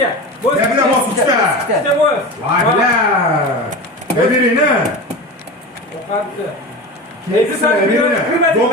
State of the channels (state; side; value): normal; both; correlation 0.28